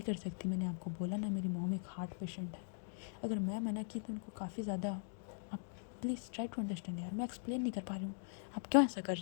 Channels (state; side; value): silent; right; digital silence